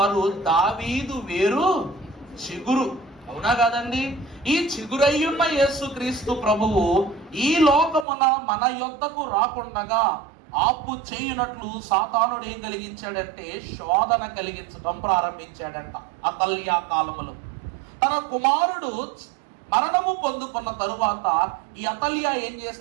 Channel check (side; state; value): left; drops out; at 8.1 s